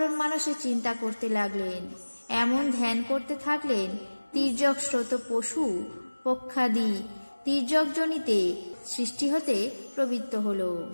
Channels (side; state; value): both; inverted; correlation -1.00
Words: মানুষে চিন্তা করতে লাগলেন। এমন ধ্যান করতে থাকলেন তির্যক স্রোত পশু পক্ষাদি তির্যকজনিতে সৃষ্টি হতে প্রবৃত্ত হল।